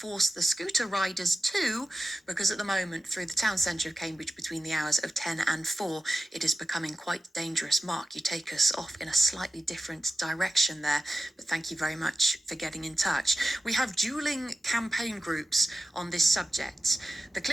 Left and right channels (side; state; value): both; normal; correlation 0.94